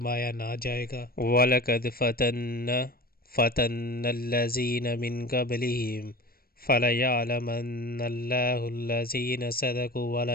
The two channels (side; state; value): right; late; 0.44 ms